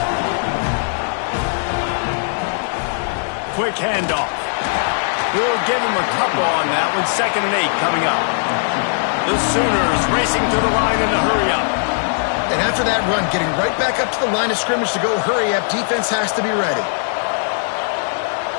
Quick handoff. We'll give him a couple on that one. 2nd and 8 coming up. The Sooners racing to the line in the hurry-up. And after that run, getting right back up to the line of scrimmage to go hurry up, defense has to be ready.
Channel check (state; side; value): silent; right; digital silence